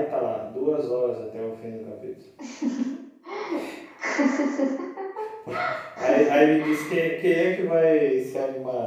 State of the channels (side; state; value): both; identical; correlation 1.00